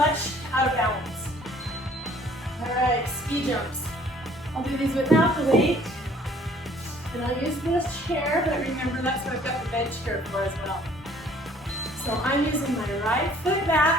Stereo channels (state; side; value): normal; both; correlation 0.57